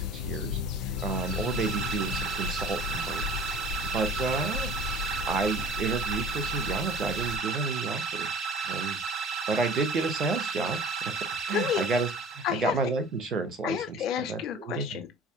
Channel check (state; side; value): normal; both; correlation 0.44